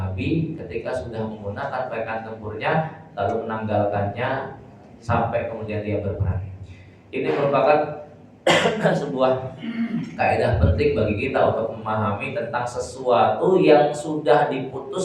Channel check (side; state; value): both; identical; correlation 1.00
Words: ketika sudah menggunakan pakaian tempurnya lalu menanggalkannya sampai kemudian dia berperang. Ini merupakan sebuah kaidah penting bagi kita untuk memahami tentang sesuatu yang sudah